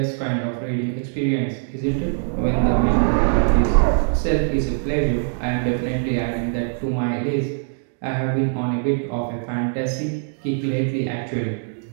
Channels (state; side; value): silent; left; 64 dB below the other